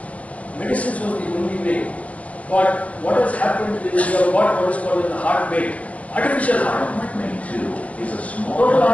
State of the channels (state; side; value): late; right; 0.067 ms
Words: medicines was the only way. But what has happened is we have got what is called the heart mate, artificial heart. Heart mate 2 is a small Total